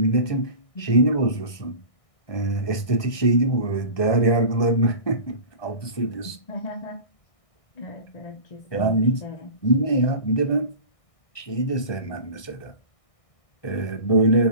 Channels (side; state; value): right; late; 1.2 ms